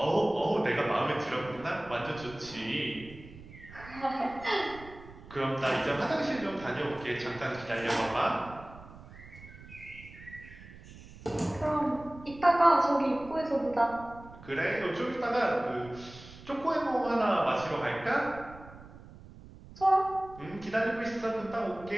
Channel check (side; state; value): right; noise; rumble, 18 dB below the sound